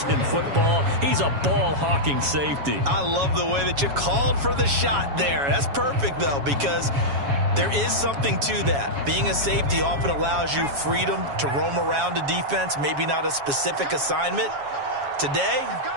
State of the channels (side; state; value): left; late; 7.2 ms